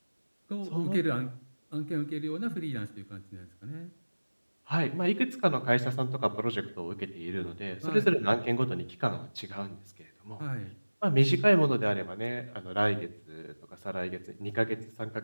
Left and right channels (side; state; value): both; inverted; correlation -1.00